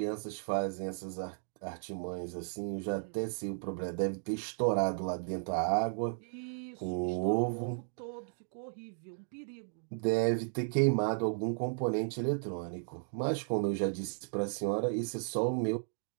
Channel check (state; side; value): silent; left; digital silence